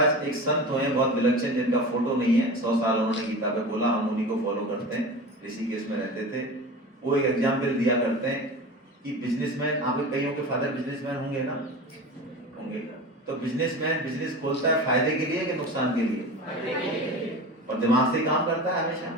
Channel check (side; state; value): both; normal; correlation 0.31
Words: एक संत हुए बहुत विलक्षण, जिनका फोटो नहीं है। 100 साल उन्होंने गीता पे बोला, हम उन्हीं को फॉलो करते हैं। ऋषिकेश में रहते थे। वो एक एग्जाम्पल दिया करते हैं कि बिजनेसमैन, आप कईयों के फादर बिजनेसमैन होंगे ना, होंगे। तो बिजनेसमैन बिजनेस खोलता है फायदे के लिए कि नुकसान के लिए? और दिमाग से काम करता है हमेशा,